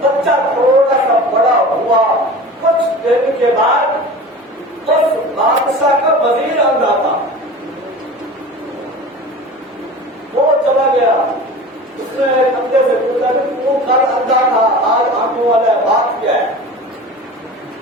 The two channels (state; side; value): normal; both; correlation 0.36